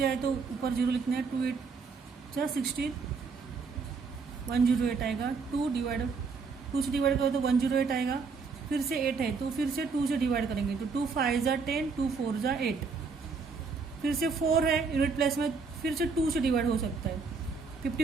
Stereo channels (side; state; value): left; quieter; 4.9 dB